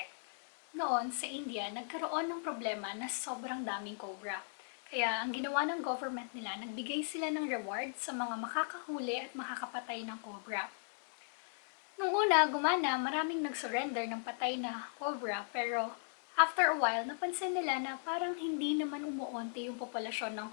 Noon, sa India, nagkaroon ng problema na sobrang daming cobra. Kaya ang ginawa ng government nila, nagbigay sila ng reward sa mga makakahuli at makakapatay ng cobra. Nung una, gumana, maraming nag-surrender ng patay na cobra, pero after a while, napansin nila na parang hindi naman umuunti yung populasyon ng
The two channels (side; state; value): right; silent; digital silence